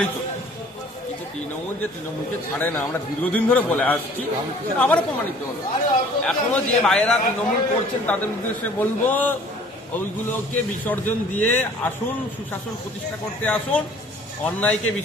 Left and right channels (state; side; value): normal; both; correlation 0.52